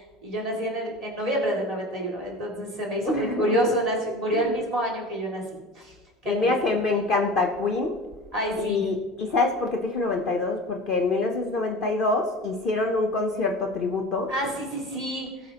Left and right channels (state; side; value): normal; both; correlation 0.36